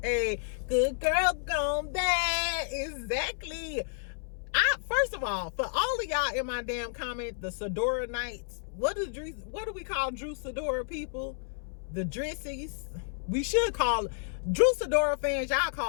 Hey, Good Girl Gone Bad. Exactly. First of all, for all of y'all in my damn comment, the Sidora Knights, what do we call Drew Sidora people? The Drissies. We should call Drew Sidora fans, y'all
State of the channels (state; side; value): silent; right; 57 dB below the other